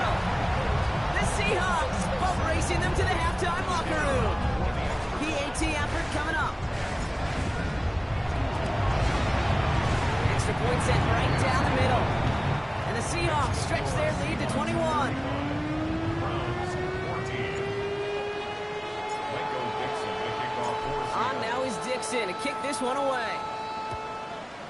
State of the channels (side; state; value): both; identical; correlation 1.00